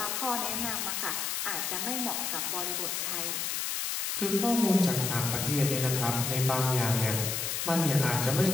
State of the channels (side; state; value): left; noise; hiss, 1 dB below the sound